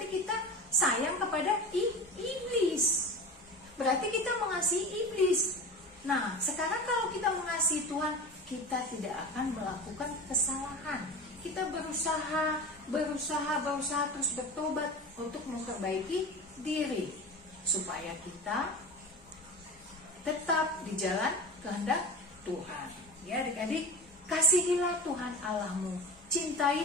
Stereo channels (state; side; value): normal; both; correlation 0.30